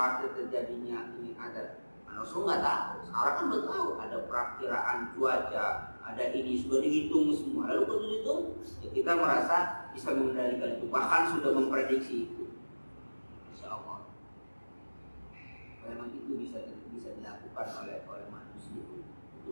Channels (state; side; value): inverted; both; correlation -1.00